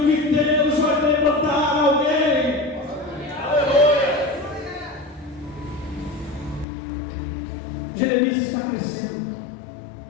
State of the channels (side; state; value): right; drops out; at 6.7 s